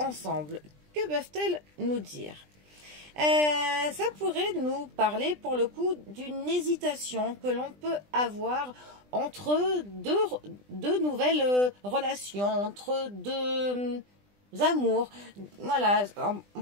que peuvent-elles nous dire? Ça pourrait nous parler pour le coup d'une hésitation que l'on peut avoir entre deux nouvelles relations, entre deux amours. Voilà, on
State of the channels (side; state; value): left; late; 20 ms